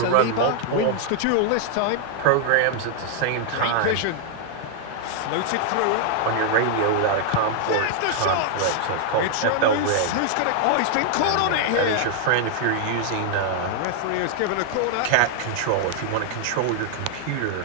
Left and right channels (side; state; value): both; different; correlation 0.00